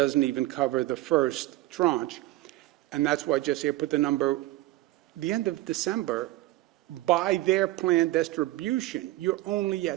even cover the first tranche, and that's why, Jesse, I put the number, the end of December, by their planned distribution, you're only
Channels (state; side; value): quieter; left; 17.3 dB